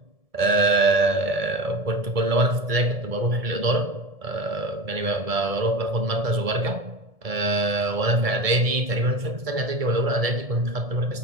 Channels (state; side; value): late; left; 1.7 ms